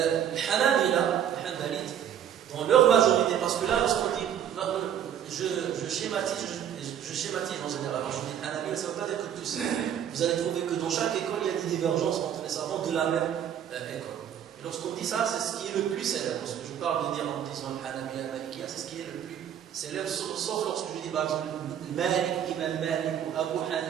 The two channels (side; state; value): left; quieter; 9.5 dB